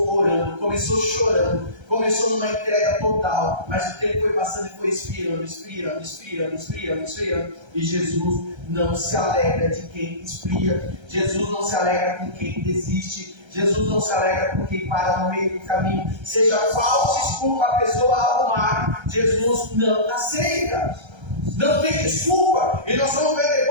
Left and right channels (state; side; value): late; left; 1.3 ms